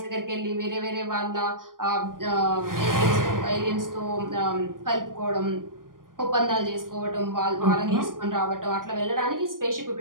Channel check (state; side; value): late; left; 0.90 ms